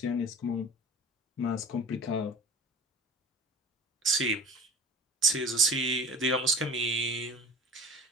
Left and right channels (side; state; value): both; normal; correlation 0.38